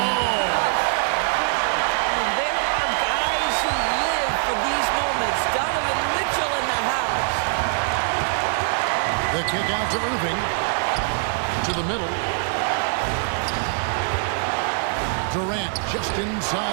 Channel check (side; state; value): left; silent; 63 dB below the other